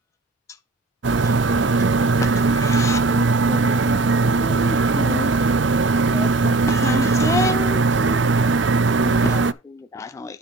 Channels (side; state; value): left; quieter; 3.0 dB